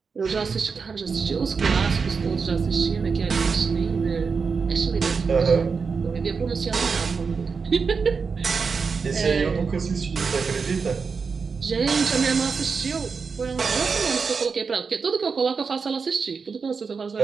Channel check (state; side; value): quieter; left; 5.2 dB